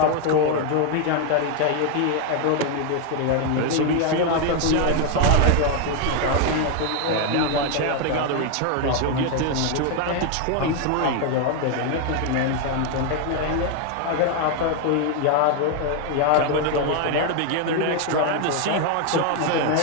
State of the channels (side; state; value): both; different; correlation 0.01